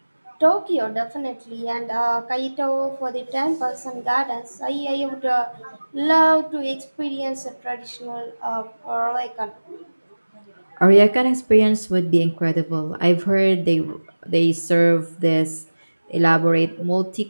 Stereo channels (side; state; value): both; inverted; correlation -1.00